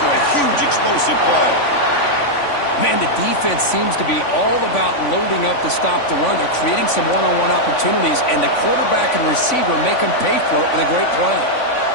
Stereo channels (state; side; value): late; right; 3.5 ms